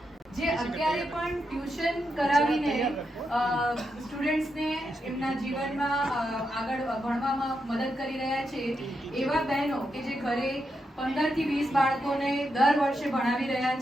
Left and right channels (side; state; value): both; normal; correlation 0.84